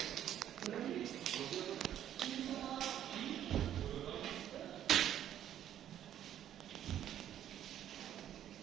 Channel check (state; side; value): quieter; left; 10.9 dB